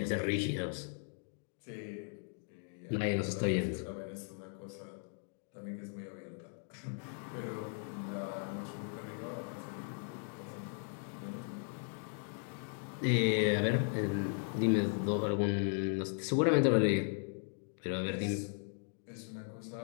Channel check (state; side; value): silent; right; 53 dB below the other